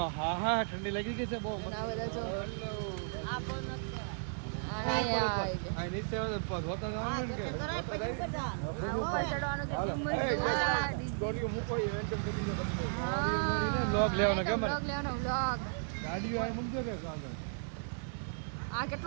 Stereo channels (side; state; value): left; silent; digital silence